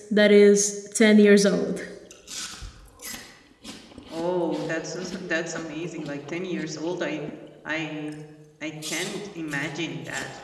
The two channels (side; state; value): both; identical; correlation 1.00